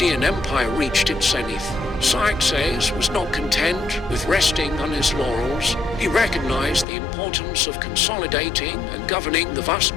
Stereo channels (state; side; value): drops out; right; at 6.9 s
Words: Empire reached its zenith. Xerxes was not content with resting on his laurels. He recognized the importance of consolidating and governing the vast